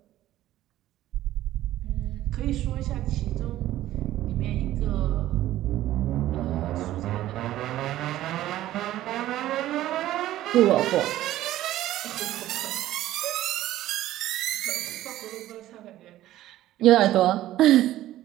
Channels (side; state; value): left; quieter; 14.3 dB